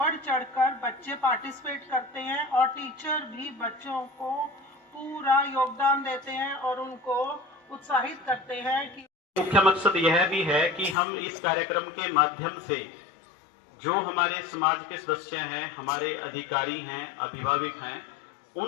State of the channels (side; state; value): right; drops out; at 11.0 s